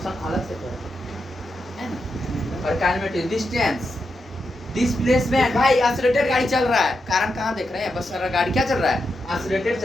अलग से है ना। और काइनेमेटिक्स, डिस्टेंस, डिस्प्लेसमेंट, भाई एक्सीलरेटेड गाड़ी चल रहा है, कारण कहाँ देख रहे हैं, बस गाड़ी क्या चल रहा है, एक्सीलरेटेड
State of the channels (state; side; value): normal; both; correlation 0.86